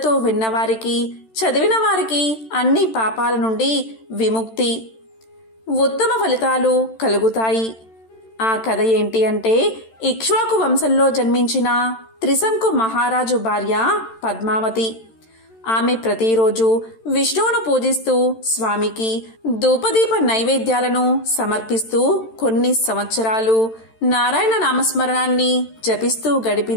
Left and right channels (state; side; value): late; right; 13 ms